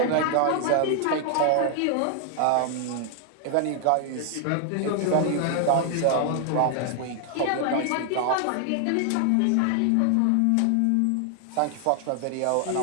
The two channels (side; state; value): both; different; correlation 0.00